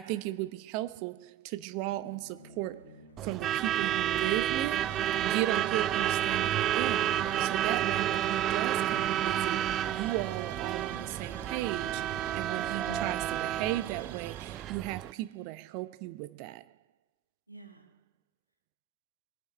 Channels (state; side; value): quieter; left; 12.0 dB